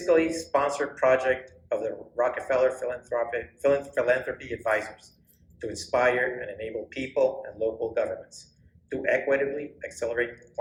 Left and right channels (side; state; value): both; identical; correlation 1.00